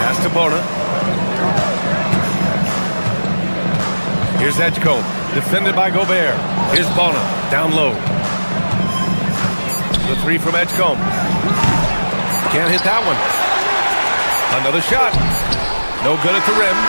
Pass to Bona. Here's Edgecombe, defended by Gobert. Here's Bona, down low. The three from Edgecombe. Can't hit that one. Another shot. No good at the rim.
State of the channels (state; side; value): inverted; both; correlation -1.00